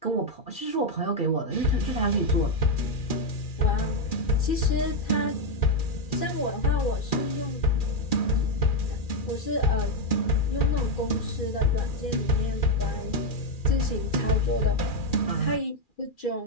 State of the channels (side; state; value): right; late; 2.4 ms